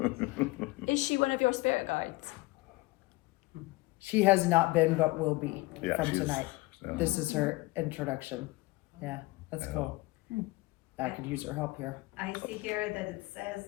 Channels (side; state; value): right; quieter; 21.8 dB